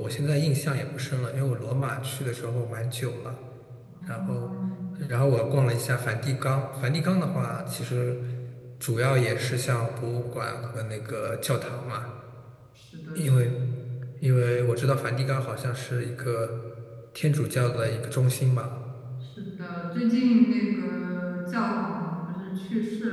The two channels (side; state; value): both; identical; correlation 1.00